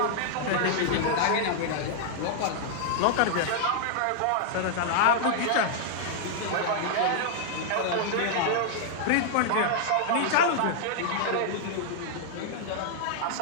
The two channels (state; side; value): different; both; correlation -0.01